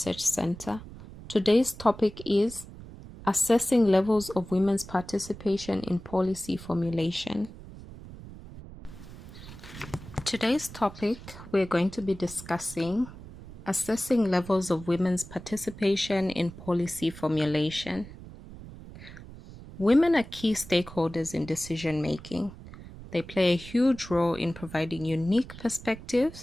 Center. Today's topic is assessing levels of women's participation in policy formulation. Today's topic, we're going to be discussing assessing levels of women's participation in policy formulation. Women are key stakeholders in decision making. They play a huge role in providing unique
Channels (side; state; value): right; noise; rumble, 15 dB below the sound